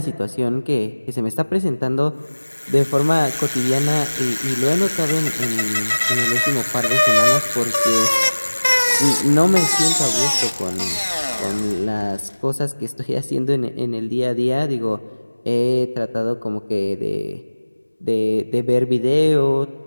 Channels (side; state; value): both; inverted; correlation -1.00